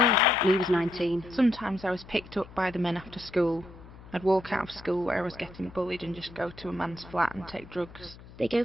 and he was 19. Sometimes I was picked up by the men after school. I'd walk out of school where I was getting bullied and just go to a man's flat and take drugs. They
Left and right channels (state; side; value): noise; left; hum, 19 dB below the sound